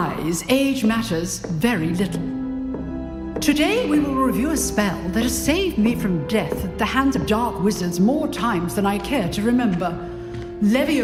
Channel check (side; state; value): both; identical; correlation 1.00